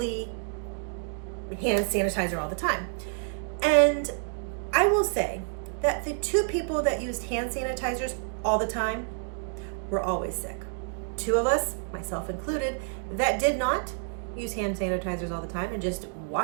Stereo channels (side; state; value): left; silent; 57 dB below the other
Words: hand sanitizer all the time. And I will say that the 2 people that used hand sanitizers all the time were always sick. 2 of us, myself included, that did not use hand sanitizers all the time and just